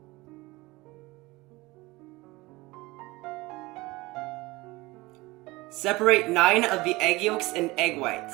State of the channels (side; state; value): left; quieter; 21.6 dB